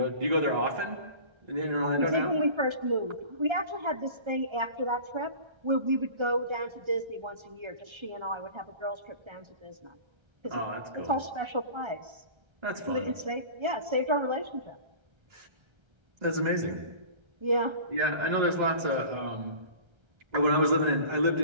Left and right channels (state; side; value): late; left; 1.3 ms